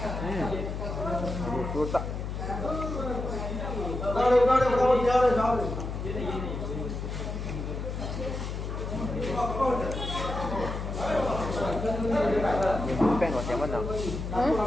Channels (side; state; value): left; noise; hum, 5 dB below the sound